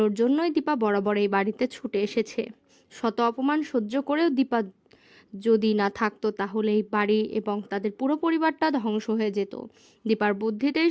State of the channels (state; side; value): identical; both; correlation 1.00